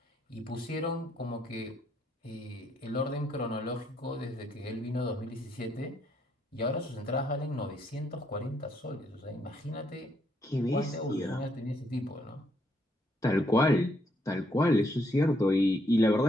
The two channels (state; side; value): normal; both; correlation 0.73